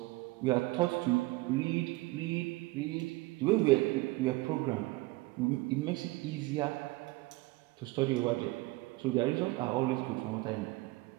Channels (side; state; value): left; quieter; 21.3 dB